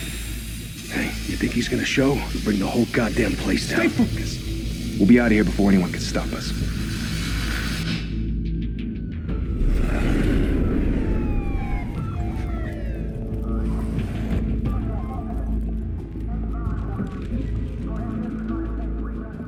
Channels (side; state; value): both; identical; correlation 1.00